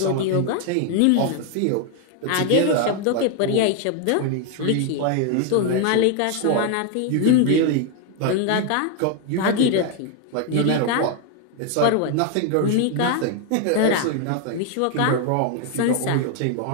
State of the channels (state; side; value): different; both; correlation 0.01